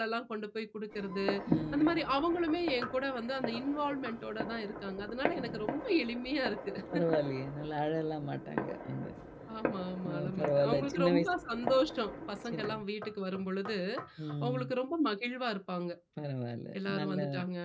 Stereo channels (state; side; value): identical; both; correlation 1.00